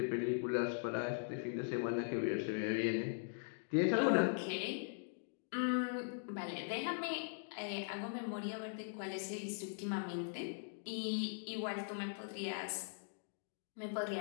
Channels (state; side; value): silent; right; digital silence